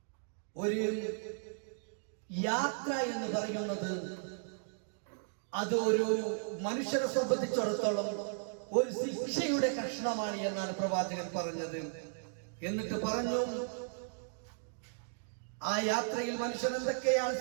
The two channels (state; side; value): silent; left; digital silence